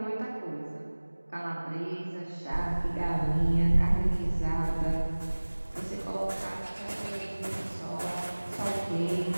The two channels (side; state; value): both; inverted; correlation -1.00